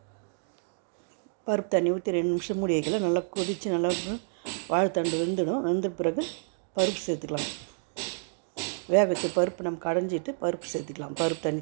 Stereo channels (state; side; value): silent; left; digital silence